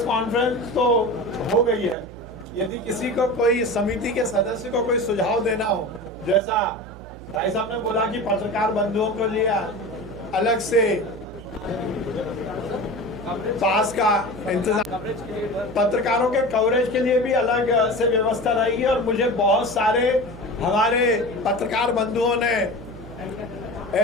कॉन्फ्रेंस तो हो गई है। यदि किसी को कोई समिति के सदस्य को कोई सुझाव देना हो, जैसा भाई साहब ने बोला कि पत्रकार बंधुओं को लिए अलग से पास का इंतजाम, पत्रकारों के कवरेज के लिए भी अलग से व्यवस्था रहेगी। और मुझे बहुत सारे हमारे पत्रकार बंधुओं ने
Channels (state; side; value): noise; right; hum, 16 dB below the sound